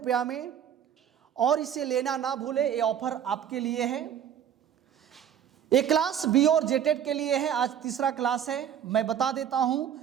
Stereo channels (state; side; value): quieter; left; 9.3 dB